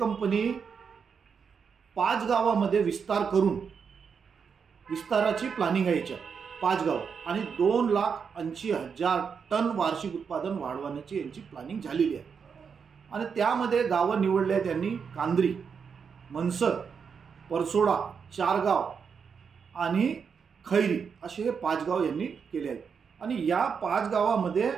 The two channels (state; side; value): quieter; left; 6.3 dB